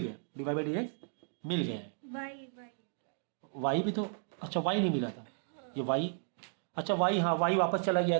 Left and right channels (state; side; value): silent; left; digital silence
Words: D Y by D X मिल गया है, वाई भी तो, अच्छा वाई नहीं मिला था, ये वाई, अच्छा वाई, हाँ वाई वापस चला गया